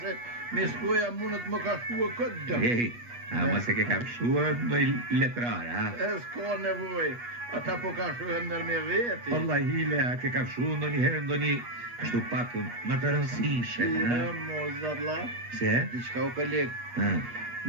se Miskoja mundet më ka shkua këtë dëm. Hey, ama se ke kafshua në letrar, ha? E s'ka nevoj, ata po ka shuhen nër me veti. Allah hile, a ke kafshua në një herë, në një kështu pak më të rëndësishe. Mo zarla. Se? Diçka o koleg.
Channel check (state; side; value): late; left; 8.3 ms